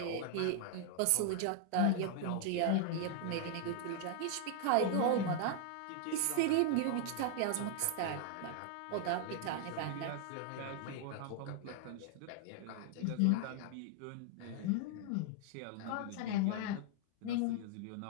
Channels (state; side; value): different; both; correlation 0.00